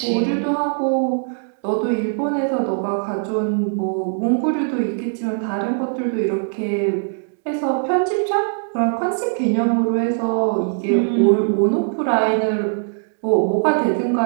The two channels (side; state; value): left; silent; digital silence